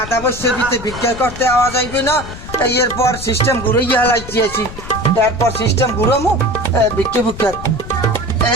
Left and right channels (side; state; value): left; noise; rumble, 12 dB below the sound